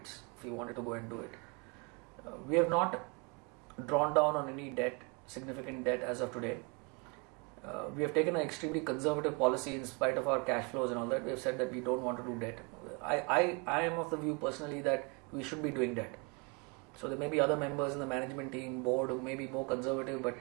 if we wanted to go and do it. We have not drawn down on any debt, significant debt as of today. We have taken an extremely conservative policy in spite of our cash flows and all that. We have said that we don't want to do debt. I am of the view personally that we should be doing debt. So there may be other members in the management team, board who may be more conservative, but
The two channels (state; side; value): quieter; left; 32.0 dB